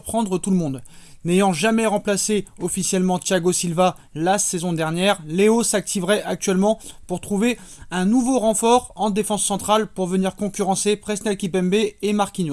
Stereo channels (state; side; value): identical; both; correlation 1.00